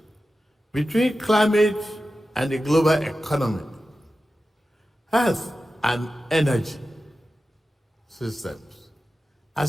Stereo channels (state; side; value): normal; both; correlation 0.93